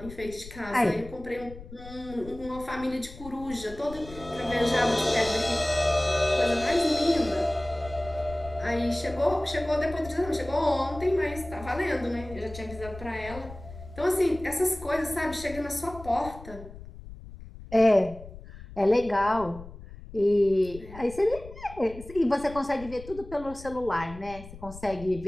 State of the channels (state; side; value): noise; left; rumble, 15 dB below the sound